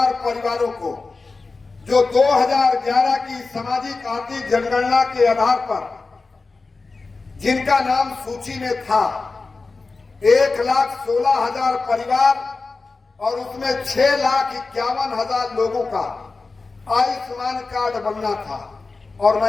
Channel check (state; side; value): quieter; right; 3.9 dB